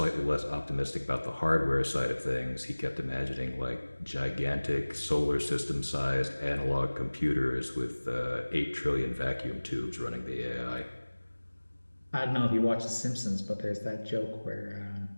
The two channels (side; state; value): both; inverted; correlation -1.00